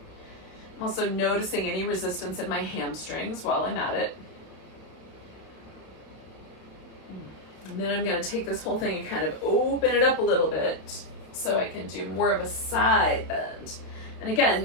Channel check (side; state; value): right; late; 31 ms